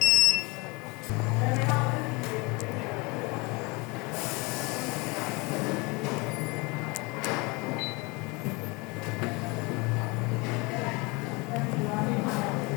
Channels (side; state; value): right; quieter; 26.9 dB